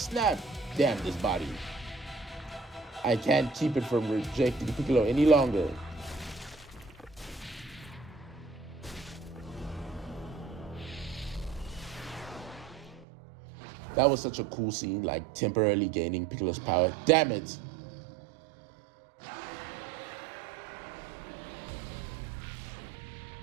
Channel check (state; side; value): drops out; left; at 13.1 s